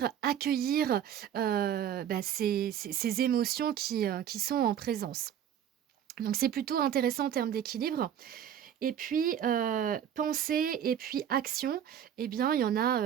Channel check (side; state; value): left; quieter; 9.6 dB